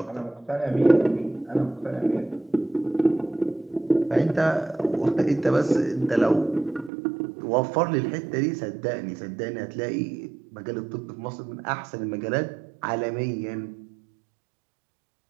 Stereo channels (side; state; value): left; drops out; at 6.9 s